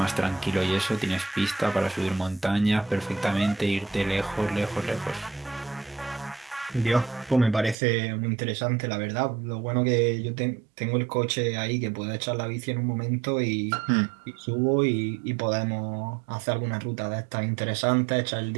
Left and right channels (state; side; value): drops out; left; at 7.8 s